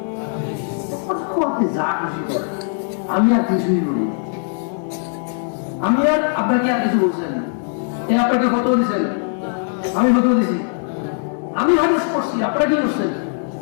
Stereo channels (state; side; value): silent; right; 61 dB below the other